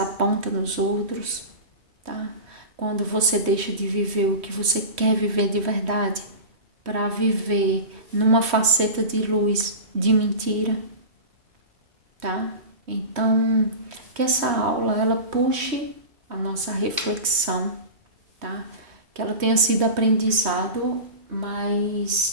nos outros, tá? Quando você deixa de viver o que você quer viver de verdade, para viver numa faceta de luz, de mentira, tá? Então, que essa aula ela puxe a nossa reflexão, tá? Que ela tenha sido aprendizado,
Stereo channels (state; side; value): late; left; 3.2 ms